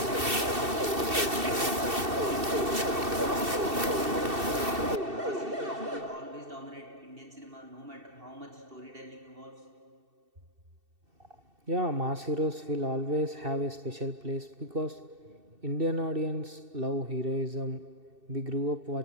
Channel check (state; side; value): late; left; 2.7 ms